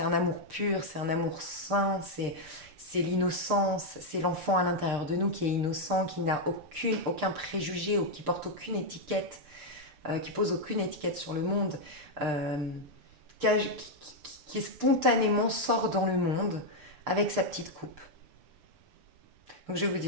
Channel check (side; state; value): left; late; 6.7 ms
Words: un amour pur, c'est un amour sain, c'est l'innocence, c'est l'enfant à l'intérieur de nous qui est innocent, qui n'a aucun préjugé, ou qui porte aucune étiquette, qui pose aucune étiquette sur le monde, qui spontanément sort dans le monde avec sa petite coupe. Donc je vais vous